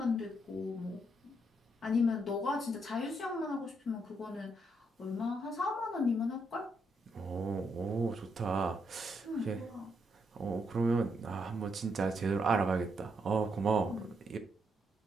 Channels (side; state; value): both; normal; correlation 0.77